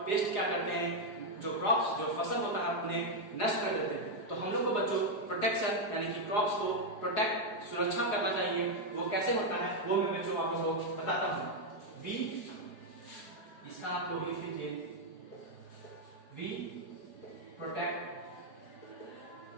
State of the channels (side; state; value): right; late; 4.8 ms